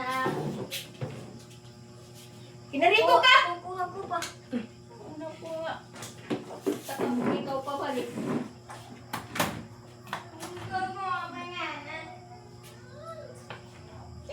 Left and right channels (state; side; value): identical; both; correlation 1.00